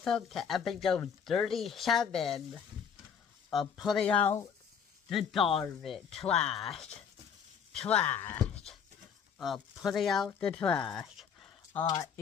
to episode 37 of Putting Out the Garbage, Trash, Putting Out the Trash.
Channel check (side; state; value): right; quieter; 7.2 dB